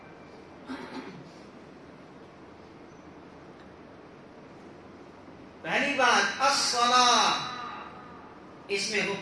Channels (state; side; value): identical; both; correlation 1.00